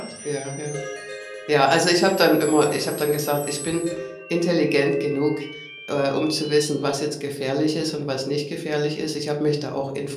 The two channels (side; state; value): both; identical; correlation 1.00